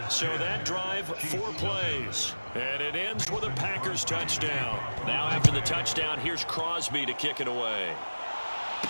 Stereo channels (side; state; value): both; inverted; correlation -1.00